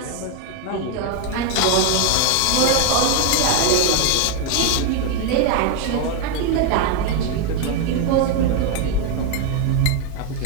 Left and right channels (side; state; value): both; different; correlation 0.01